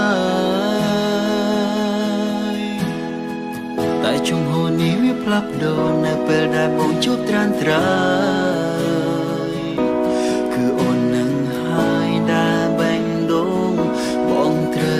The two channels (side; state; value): both; identical; correlation 1.00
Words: យតែជុំហូរនេះវាផ្លាស់ប្ដូរនៅពេលដែលបងជួបត្រានត្រើយគឺអូននឹងហើយដែលបែងដូងបងត្រូ